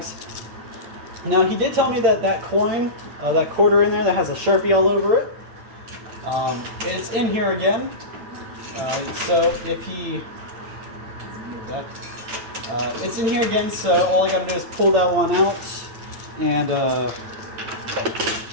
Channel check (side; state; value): left; late; 8.9 ms